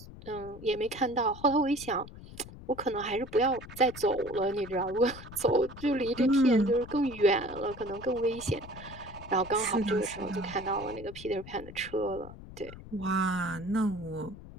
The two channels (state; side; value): noise; left; rumble, 15 dB below the sound